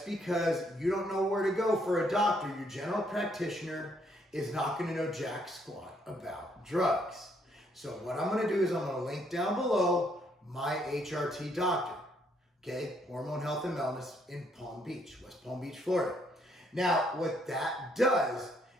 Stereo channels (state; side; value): normal; both; correlation 0.70